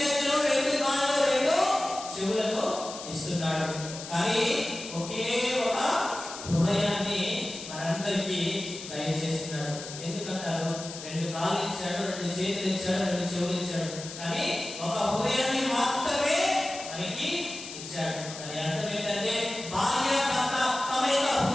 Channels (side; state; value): left; noise; hiss, 11 dB below the sound